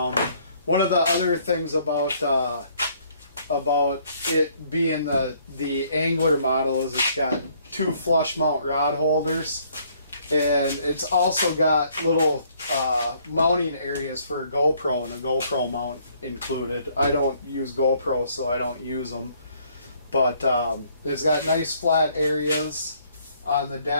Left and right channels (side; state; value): both; inverted; correlation -0.64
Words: One of the other things about it being the angler model is it's got two flush mount rod holders, and it's also got little mounting areas for a GoPro and a GoPro mount included. I don't use GoPro, so I don't use them, but it's got nice flat areas on the